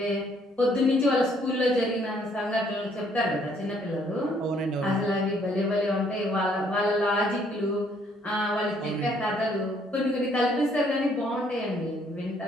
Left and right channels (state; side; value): normal; both; correlation 0.66